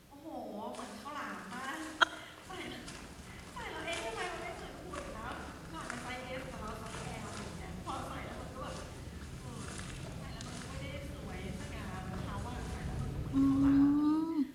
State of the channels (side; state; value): both; identical; correlation 1.00